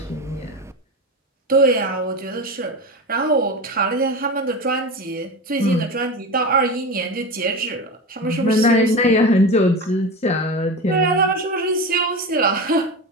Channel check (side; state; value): both; normal; correlation 0.24